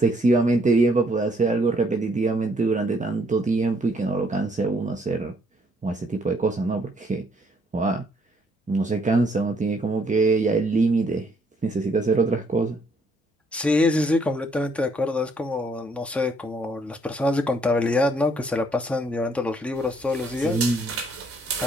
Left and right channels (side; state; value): both; normal; correlation 0.68